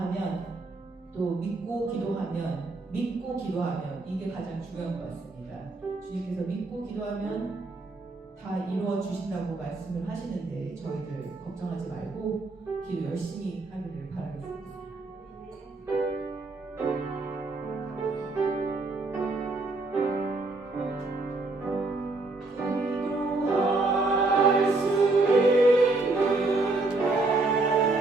또 믿고 기도하면 이게 가장 중요한 것 같습니다. 주님께서 믿고 기도하면 다 이루어 주신다고 말씀을 하시는데 저희들 걱정하지 말고 기도 열심히 하기를 바라겠습니다.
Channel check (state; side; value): quieter; left; 3.3 dB